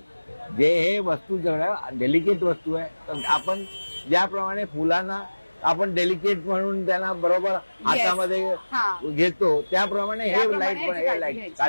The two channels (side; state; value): both; inverted; correlation -1.00